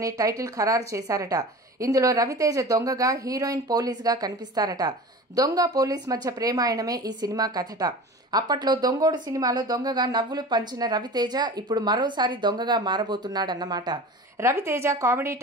టైటిల్ ఖరారు చేశారట. ఇందులో రవితేజ దొంగగా, హీరోయిన్ పోలీస్గా కనిపిస్తారట. దొంగ పోలీస్ మధ్య ప్రేమాయణమే ఈ సినిమా కథట. అప్పట్లో దొంగోడు సినిమాలో దొంగగా నవ్వులు పంచిన రవితేజ ఇప్పుడు మరోసారి దొంగగా మారబోతున్నాడన్నమాట. రవితేజ కామెడీ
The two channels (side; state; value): both; normal; correlation 0.36